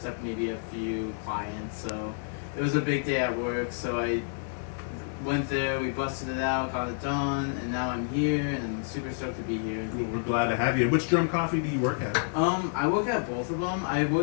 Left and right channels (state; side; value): silent; right; digital silence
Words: maybe a few clients. So it was a big day at work. So I went there, we busted it out, got it done, and now I'm here, and I'm super stoked to be here. Well, we're glad to have you. Which Drum Coffee do you work at? I work at both of them. I